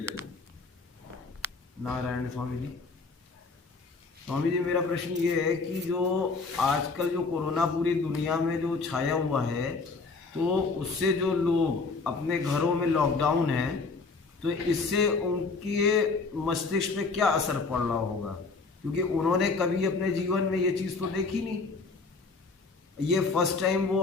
नारायण स्वामी जी, स्वामी जी मेरा प्रश्न ये है कि जो आजकल जो कोरोना पूरी दुनिया में जो छाया हुआ है, तो उससे जो लोग अपने घरों में लॉकडाउन है, तो इससे उनके मस्तिष्क पे क्या असर पड़ रहा होगा? क्योंकि उन्होंने कभी अपने जीवन में ये चीज़ तो देखी नहीं, ये फर्स्ट टाइम वो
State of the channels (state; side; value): quieter; right; 4.2 dB